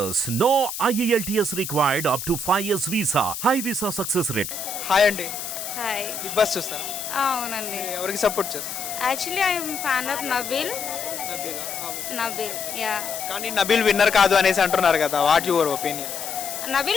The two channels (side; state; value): left; noise; hiss, 6 dB below the sound